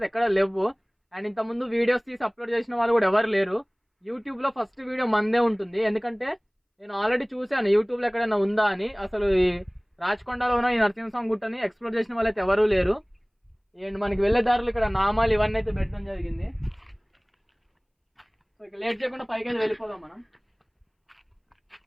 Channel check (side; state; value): both; identical; correlation 1.00